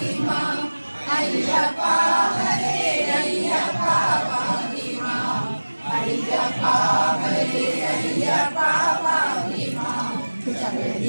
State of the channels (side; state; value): both; inverted; correlation -1.00